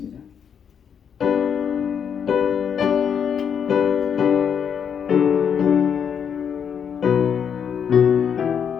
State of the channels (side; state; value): right; quieter; 7.6 dB